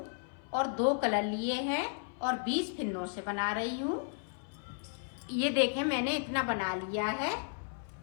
और 2 कलर लिए हैं और 20 फिन्नों से बना रही हूँ। ये देखें, मैंने इतना बना लिया है।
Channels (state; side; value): silent; right; 55 dB below the other